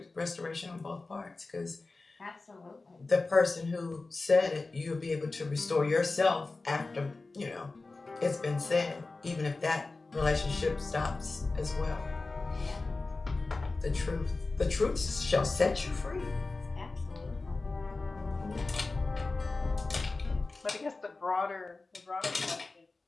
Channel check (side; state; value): right; quieter; 3.5 dB